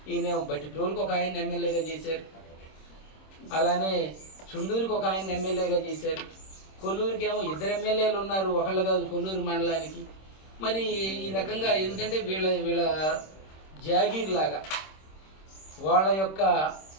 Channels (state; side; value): late; right; 26 ms